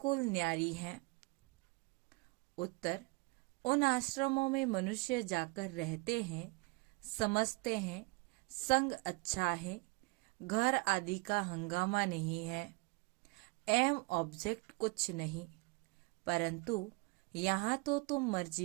न्यारी है? उत्तर, उन आश्रमों में मनुष्य जाकर रहते हैं, समझते हैं संग अच्छा है, घर आदि का हंगामा नहीं है, एम ऑब्जेक्ट कुछ नहीं। परंतु यहाँ तो तुम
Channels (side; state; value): left; quieter; 27.9 dB